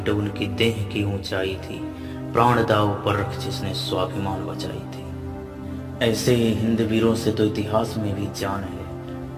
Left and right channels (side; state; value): both; identical; correlation 1.00